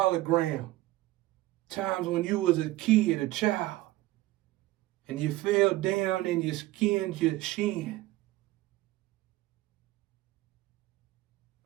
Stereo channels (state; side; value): quieter; left; 17.6 dB